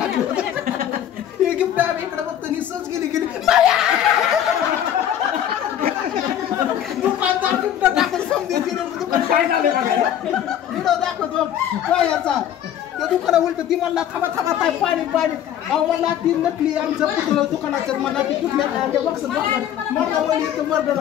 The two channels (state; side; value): quieter; right; 10.5 dB